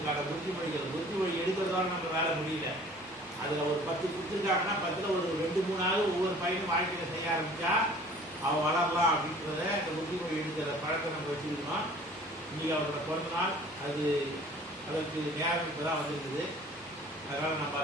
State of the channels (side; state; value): both; normal; correlation 0.49